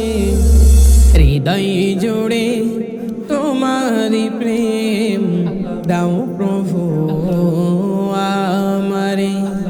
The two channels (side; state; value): both; identical; correlation 1.00